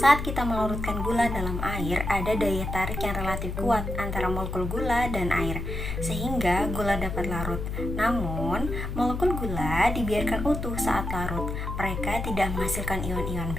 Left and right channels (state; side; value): noise; left; hum, 5 dB below the sound